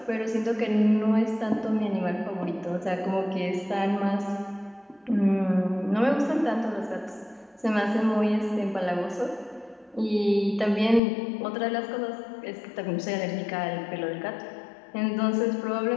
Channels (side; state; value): right; drops out; at 11.0 s